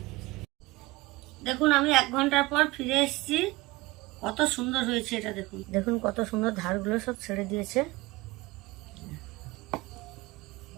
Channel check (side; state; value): left; quieter; 21.2 dB